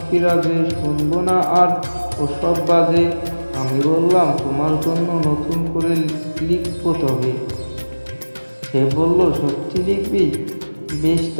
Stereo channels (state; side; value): inverted; both; correlation -1.00